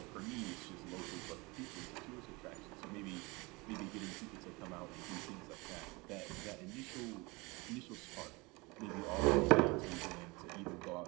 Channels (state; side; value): quieter; left; 25.3 dB